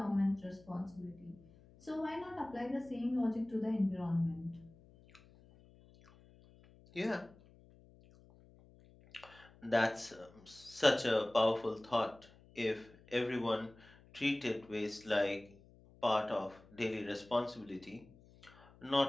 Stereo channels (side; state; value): left; noise; hum, 25 dB below the sound